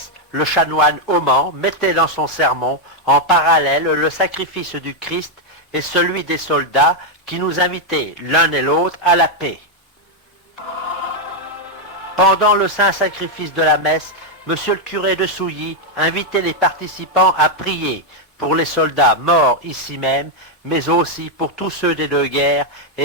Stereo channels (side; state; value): both; normal; correlation 0.01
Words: le chanoine Auman mettait dans son sermon en parallèle le sacrifice du Christ et celui des soldats qui nous invitaient l'un et l'autre à la paix. Pendant le saint sacrifice de la messe, monsieur le curé de Souilly invitait les participants à prier pour les soldats morts ici même, mais aussi pour tous ceux des deux guerres